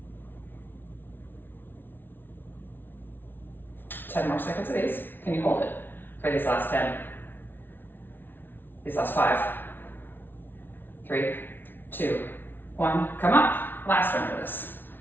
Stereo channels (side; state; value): right; late; 0.10 ms